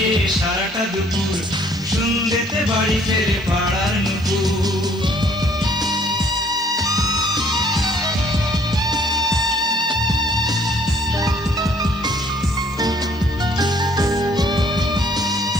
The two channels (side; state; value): both; normal; correlation 0.61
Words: সারাটা দুপুর, সন্ধ্যেতে বাড়ি ফেরে পাড়ার নুপুর।